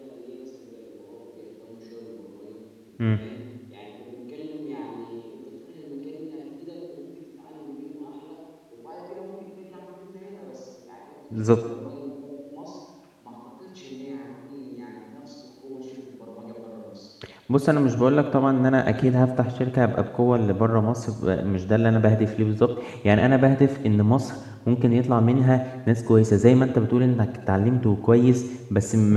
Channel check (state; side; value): identical; both; correlation 1.00